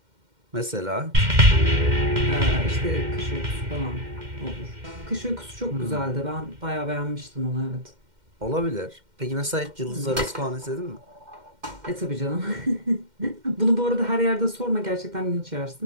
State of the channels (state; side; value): late; left; 2.1 ms